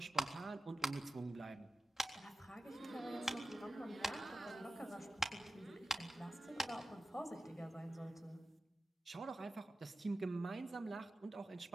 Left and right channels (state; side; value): normal; both; correlation 0.95